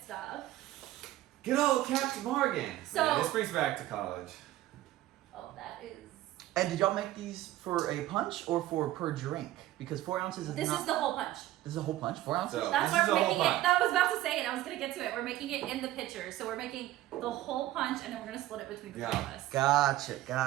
stuff. Good old Captain Morgan. So this brings back to college. Oh, that is. And did y'all make these for a punch or for per drink? Because 4 ounces is This is the whole punch. This is a whole punch? 4 ounces? So, that's why we're making it. I was about to say it. I was going to get to it. We're making it in the pitcher. So we're making the whole punch, and then we're going to split it between the two of us.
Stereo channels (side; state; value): left; quieter; 15.0 dB